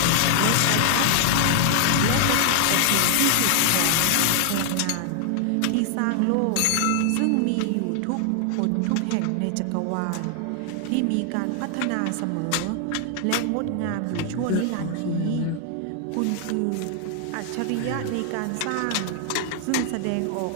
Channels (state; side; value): different; both; correlation 0.00